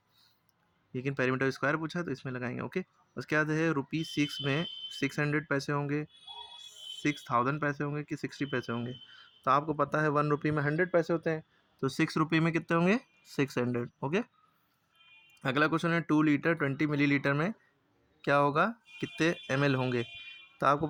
लेकिन पेरीमीटर स्क्वायर पूछा है तो इसमें लगाएंगे। ओके, उसके बाद है ₹6 में 600 पैसे होंगे, 6000 पैसे होंगे कि 60 पैसे होंगे। तो आपको पता है 1 रुपये में 100 पैसे होते हैं, तो 6 रुपये में कितने होंगे? 600। ओके, अगला क्वेश्चन है 2 लीटर 20 मिलीलीटर में क्या होगा, कितने ml होंगे। तो आपको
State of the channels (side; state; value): both; identical; correlation 1.00